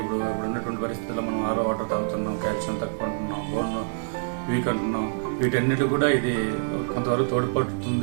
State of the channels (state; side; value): silent; left; 58 dB below the other